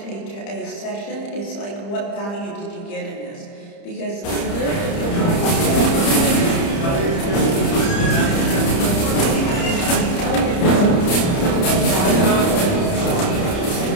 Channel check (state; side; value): late; right; 30 ms